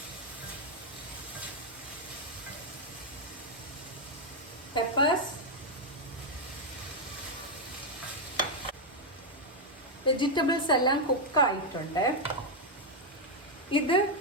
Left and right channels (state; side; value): normal; both; correlation 0.00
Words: പെപ്പേഴ്സ്. വെജിറ്റബിൾസ് എല്ലാം കുക്കായിട്ടുണ്ട്. ഇത്